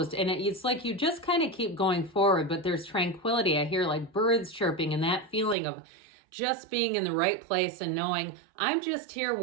And it's like you just kind of keep going forward, but there's tranquility. I hear like birds chirping and that feeling of just being in the right place and knowing I'm just here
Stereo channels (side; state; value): left; drops out; at 5.6 s